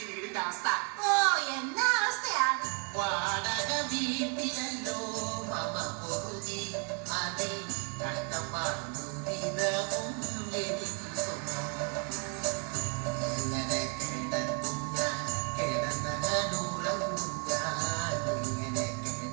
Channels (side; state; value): left; quieter; 39.3 dB